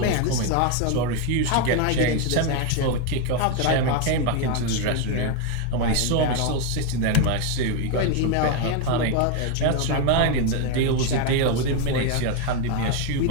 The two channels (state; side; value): different; both; correlation 0.01